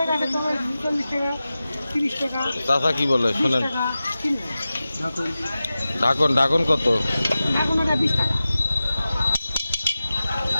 গাছে তোমার 40 টাকা, 30 টাকা। চাচা কি বলে শোনেন? ঢাকন ঢাকন কত? এখন ওটা 20 টাকা।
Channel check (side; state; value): both; inverted; correlation -0.95